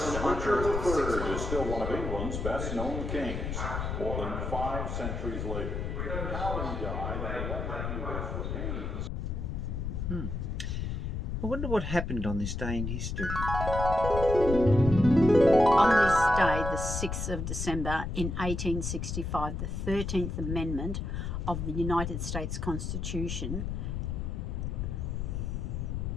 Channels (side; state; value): left; noise; rumble, 3 dB below the sound